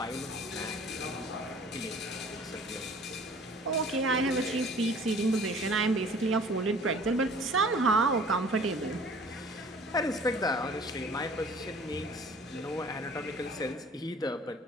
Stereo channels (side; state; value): both; normal; correlation 0.49